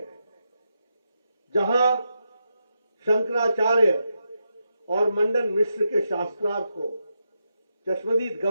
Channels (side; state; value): both; inverted; correlation -0.84